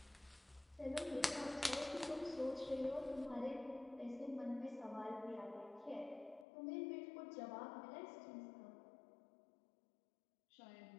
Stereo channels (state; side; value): drops out; right; at 6.5 s